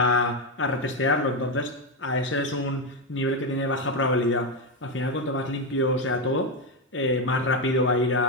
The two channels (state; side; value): normal; both; correlation 0.08